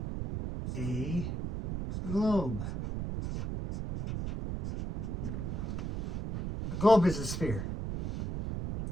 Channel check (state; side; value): noise; right; rumble, 4 dB below the sound